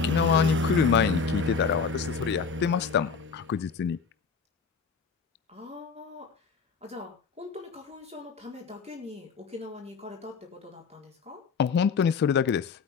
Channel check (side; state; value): right; quieter; 5.5 dB